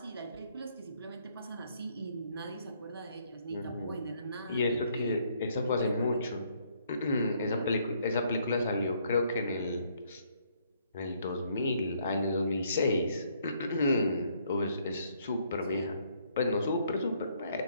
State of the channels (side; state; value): both; inverted; correlation -0.68